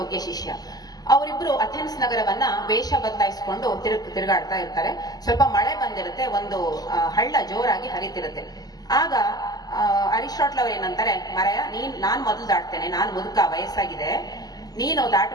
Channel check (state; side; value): late; right; 0.19 ms